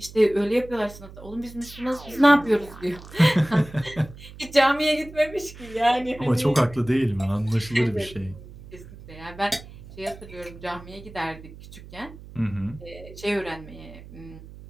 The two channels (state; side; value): noise; right; hum, 17 dB below the sound